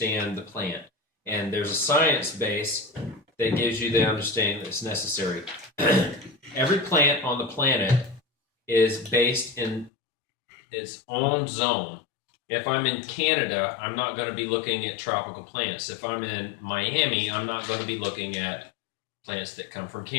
the plant. And there's a science base that gives you the understanding that's necessary. Every plant on the planet is based in its own zone. If I'm in Canada, I'm not going to be looking at tropical plants. If I'm in Miami, I'm not going to be looking at plants that come from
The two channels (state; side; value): drops out; right; at 9.9 s